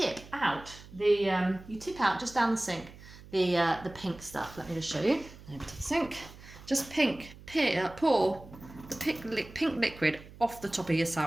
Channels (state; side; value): noise; right; hum, 19 dB below the sound